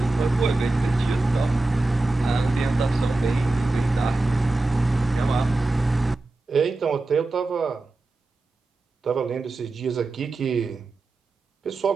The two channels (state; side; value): quieter; left; 3.0 dB